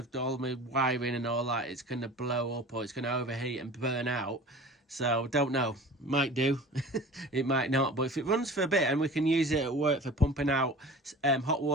all my wiring and all that. It's going to blow up or it's going to overheat and burn out. So don't know, might do. It might not, but if it runs for a bit and we can use it at work for pumping out hot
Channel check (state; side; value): normal; both; correlation 0.40